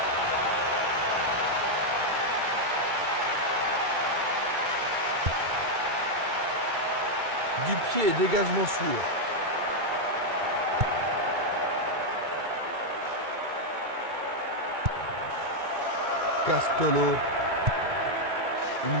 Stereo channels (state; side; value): late; left; 2.3 ms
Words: Du pied, dégagement sûr. Castolo.